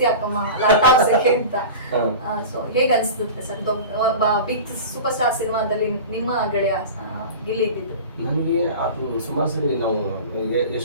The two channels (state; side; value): inverted; both; correlation -0.33